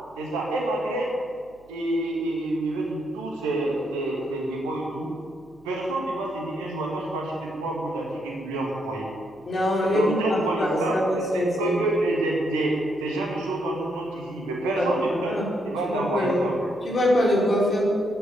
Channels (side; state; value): right; noise; hum, 30 dB below the sound